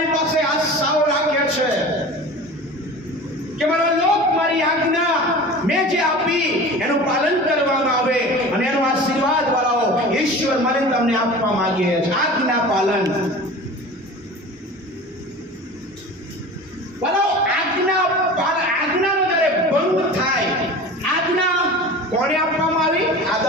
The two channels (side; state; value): both; normal; correlation 0.37